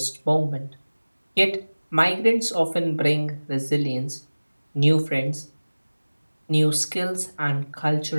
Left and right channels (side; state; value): both; inverted; correlation -1.00